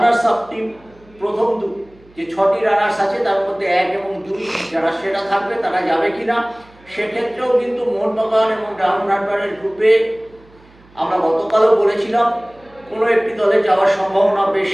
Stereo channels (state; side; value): noise; right; hum, 28 dB below the sound